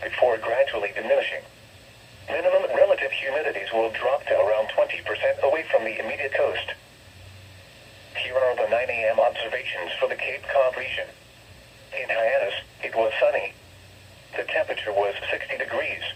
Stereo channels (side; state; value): both; identical; correlation 1.00